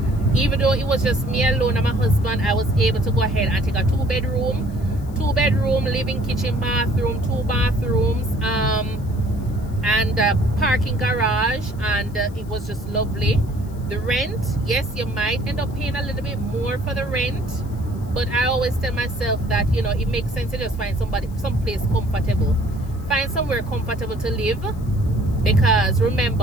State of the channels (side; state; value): left; noise; hiss, 26 dB below the sound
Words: Even though it was just me alone and my husband, I was able to go ahead and take a two bedroom, living, kitchen, bathroom, 2 bathrooms, and a parking garage, and it was just lovely. The rent, yes, you might end up paying a little bit more for the rent, but I always tell myself that it makes sense to just find someplace comfortable, find somewhere comfortable to live, because